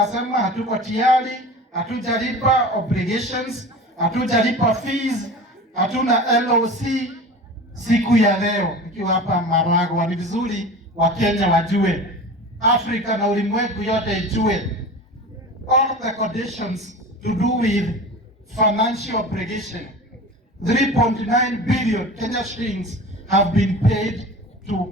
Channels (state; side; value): normal; both; correlation 0.35